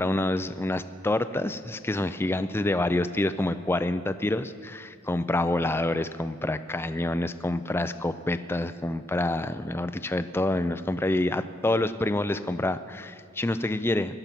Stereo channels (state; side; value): normal; both; correlation 0.80